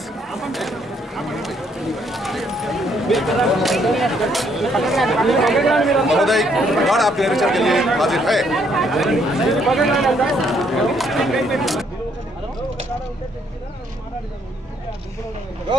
महोदय गॉड आपके निरीक्षण के लिए हाजिर है।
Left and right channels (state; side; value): normal; both; correlation 0.69